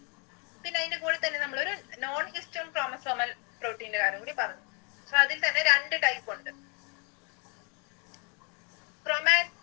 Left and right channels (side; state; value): right; quieter; 34.6 dB